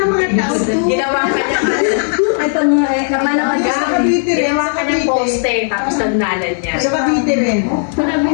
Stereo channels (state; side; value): silent; right; 70 dB below the other